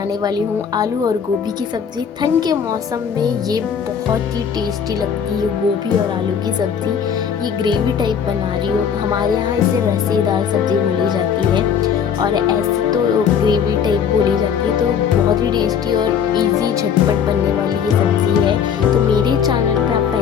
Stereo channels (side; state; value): right; quieter; 7.5 dB